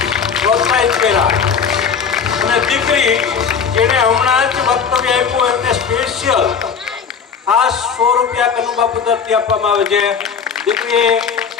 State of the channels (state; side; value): quieter; right; 6.5 dB